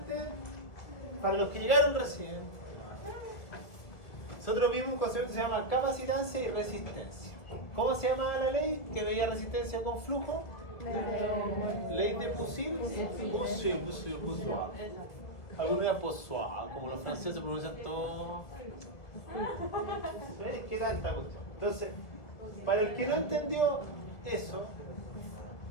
para los que llegaron recién, nosotros vimos un concepto que se llama capacitancia y resistencia. ¿Cómo se llamaba la ley que veía resistencia con flujo? Ley de Poiseuille. Algunos de Poiseuille, como los franceses pronuncian todo. ¿Ves? ¿Qué tanta cuestión? Entonces, para el que no entendió eso,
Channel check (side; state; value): right; late; 2.0 ms